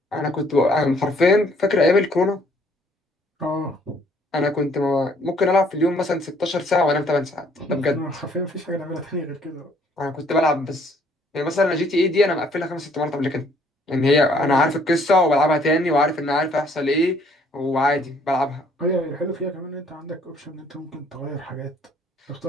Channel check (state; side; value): normal; both; correlation 0.63